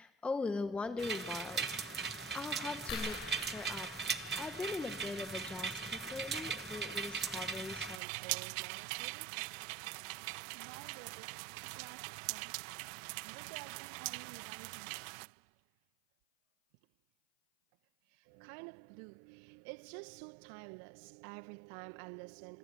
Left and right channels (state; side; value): drops out; left; at 8.0 s